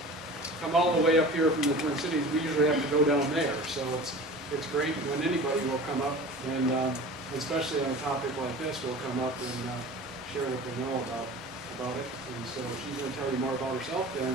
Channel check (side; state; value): both; normal; correlation 0.38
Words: come all the way up here from the Twin Cities, we usually have to go down there. So it's great when anybody will come up, and especially on a topic like this, will come up and share what they know about it. And so she's going to tell you more about herself